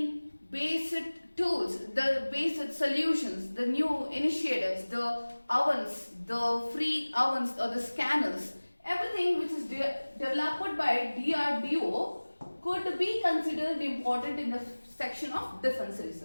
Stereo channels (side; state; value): both; inverted; correlation -1.00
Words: based tools, the based solutions, the new initiatives, the ovens, the free ovens or the scanners, everything which is developed by DRDO could be considered important in the section of defense